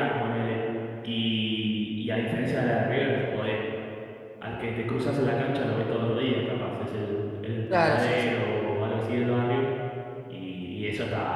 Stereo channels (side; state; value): both; identical; correlation 1.00